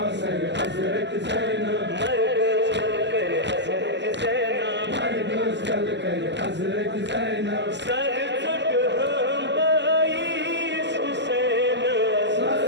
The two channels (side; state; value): left; late; 0.51 ms